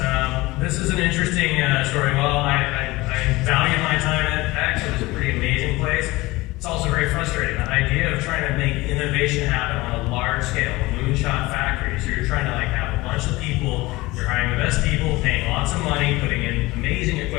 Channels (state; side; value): quieter; right; 20.6 dB